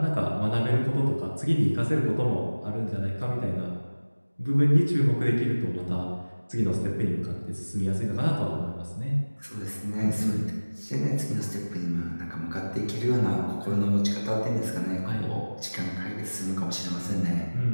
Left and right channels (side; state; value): both; inverted; correlation -1.00